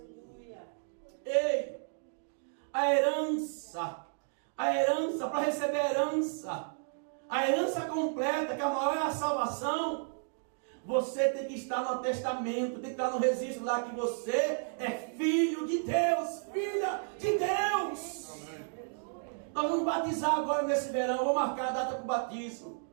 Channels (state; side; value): silent; left; digital silence